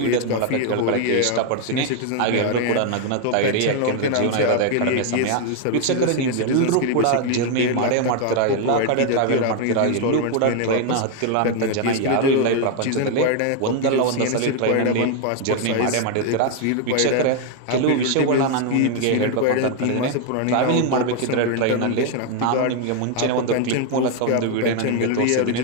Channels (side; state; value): both; different; correlation 0.01